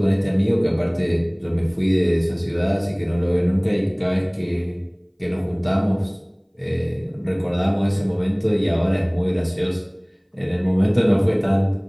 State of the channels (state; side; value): identical; both; correlation 1.00